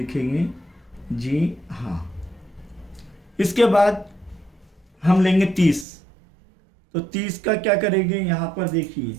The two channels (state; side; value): drops out; left; at 5.9 s